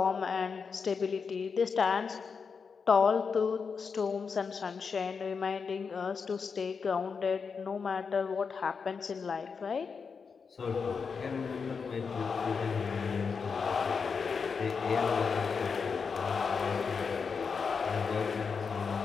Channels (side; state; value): right; quieter; 5.5 dB